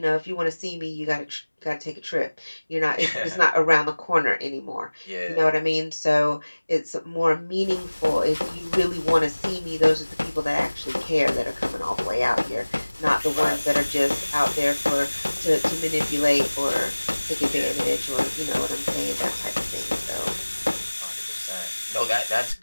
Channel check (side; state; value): both; inverted; correlation -1.00